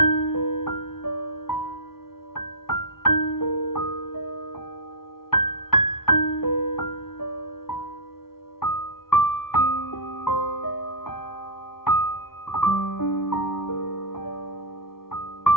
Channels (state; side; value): late; right; 0.93 ms